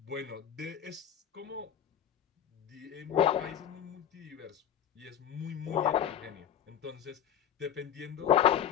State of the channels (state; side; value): quieter; right; 9.7 dB